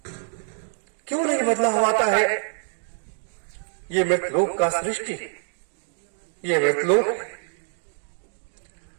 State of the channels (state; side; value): silent; left; digital silence